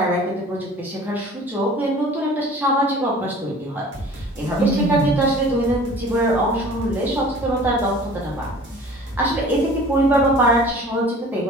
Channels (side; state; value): both; normal; correlation 0.45